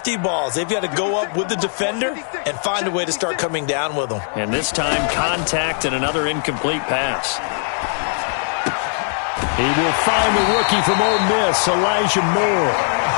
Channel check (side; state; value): right; silent; digital silence